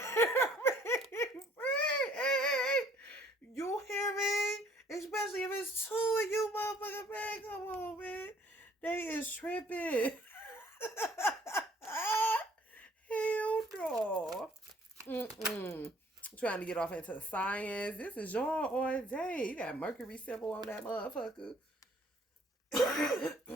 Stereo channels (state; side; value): normal; both; correlation 0.58